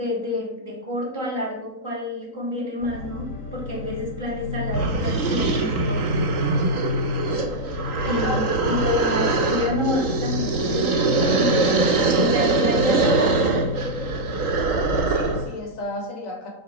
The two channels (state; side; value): late; right; 3.8 ms